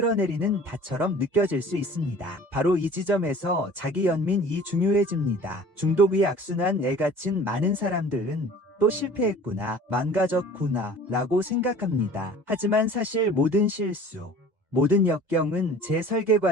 닷처럼 느껴질 수 있습니다. 바로 이 지점에서 자기 연민이 중요해집니다. 중독의 악순환에 갇힌 많은 사람들은 또 실패했구나, 망가졌구나 라고 생각합니다. 하지만 사실 모든 실수, 모든 역경은 재설계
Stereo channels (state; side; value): late; left; 2.1 ms